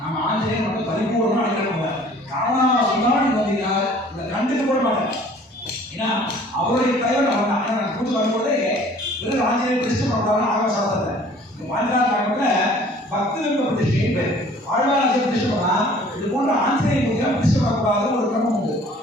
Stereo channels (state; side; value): normal; both; correlation 0.52